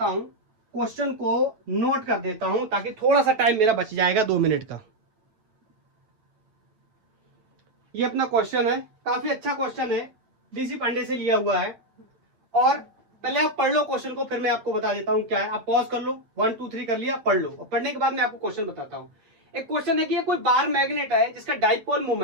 हूं, क्वेश्चन को नोट कर देता हूं ताकि थोड़ा सा टाइम मेरा बच जाएगा 2 मिनट का। ये अपना क्वेश्चन है, काफी अच्छा क्वेश्चन है, डीसी पांडे से लिया हुआ है। और पहले आप पढ़ लो क्वेश्चन को, फिर मैं आपको बता देता हूं क्या है। आप पॉज कर लो, 1 2 3 कर लिया, पढ़ लो, और पढ़ने के बाद मैं आपको क्वेश्चन बताता हूं। एक क्वेश्चन है कि ये कोई बार मैग्नेट है जिसका dipole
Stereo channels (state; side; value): late; left; 9.1 ms